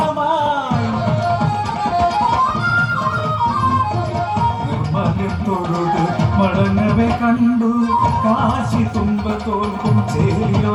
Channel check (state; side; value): identical; both; correlation 1.00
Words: നിർമ്മല്യത്തോട് മടങ്ങവെ കണ്ടു കാശി തുമ്പ തോൽക്കും